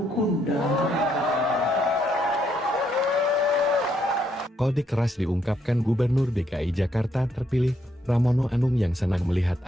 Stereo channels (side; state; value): both; normal; correlation 0.74